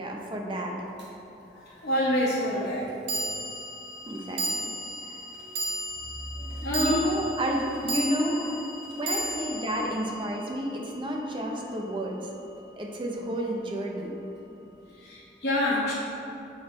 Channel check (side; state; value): both; normal; correlation 0.42